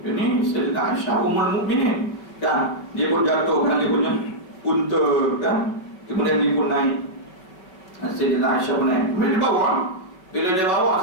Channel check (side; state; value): right; late; 5.3 ms